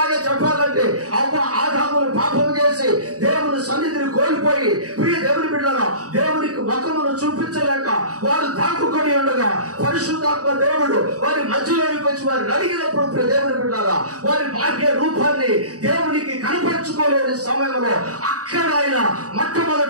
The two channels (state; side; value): late; left; 0.67 ms